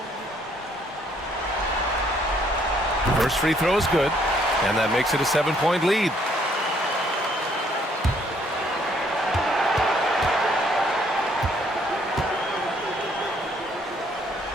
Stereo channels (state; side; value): normal; both; correlation 0.66